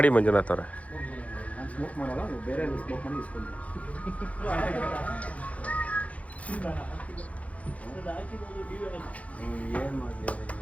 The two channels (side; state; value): right; late; 0.066 ms